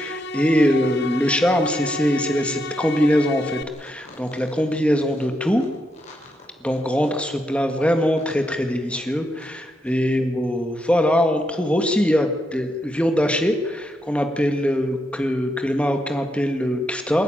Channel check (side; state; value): both; normal; correlation 0.81